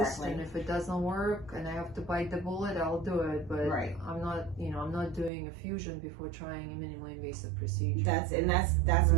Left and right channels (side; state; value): left; drops out; at 5.3 s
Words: and if it doesn't work and I have to bite the bullet, I'll do it. But I'm not, you know, I'm not doing a fusion before trying a minimally invasive procedure. That's